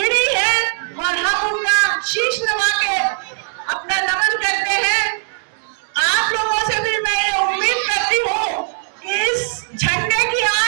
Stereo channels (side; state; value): left; silent; digital silence